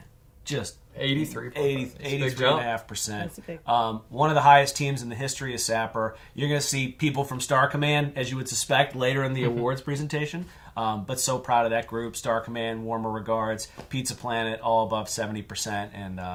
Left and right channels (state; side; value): identical; both; correlation 1.00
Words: Just 83.5%. One of the highest teams in the history of Sapper. You're going to see people from Star Command, as you would suspect, later in the awards presentation. But so proud of that group. Star Command, warmer regards. Pizza Planet, all above 70% and